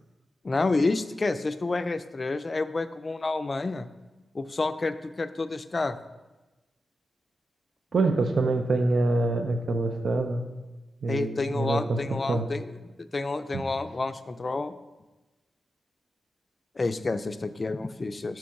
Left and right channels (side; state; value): both; normal; correlation 0.88